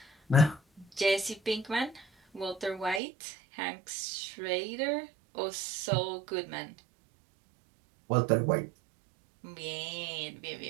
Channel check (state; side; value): drops out; left; at 3.0 s